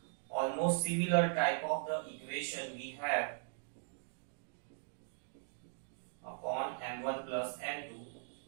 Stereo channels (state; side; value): silent; left; digital silence